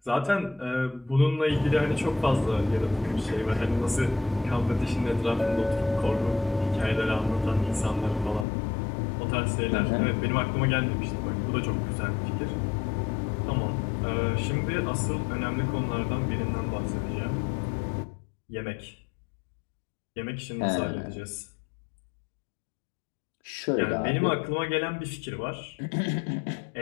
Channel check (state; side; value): drops out; right; at 8.5 s